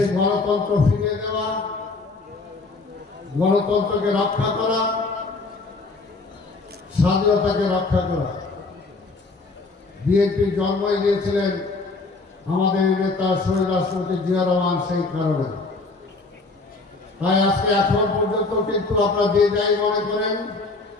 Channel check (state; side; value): quieter; right; 3.6 dB